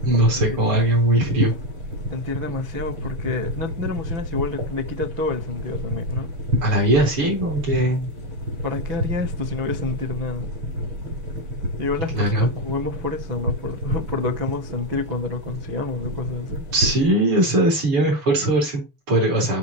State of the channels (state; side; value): late; left; 6.8 ms